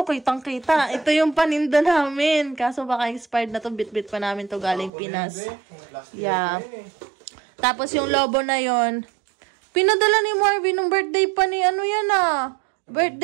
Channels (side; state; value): left; drops out; at 4.9 s